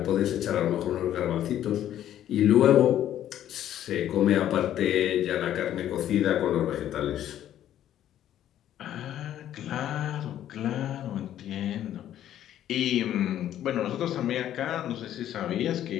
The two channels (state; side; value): quieter; right; 11.5 dB